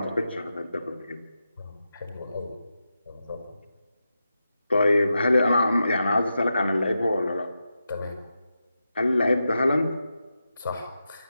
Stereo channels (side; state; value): both; inverted; correlation -0.89